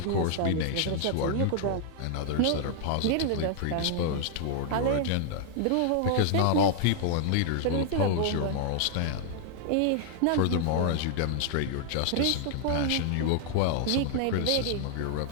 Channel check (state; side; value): different; both; correlation 0.00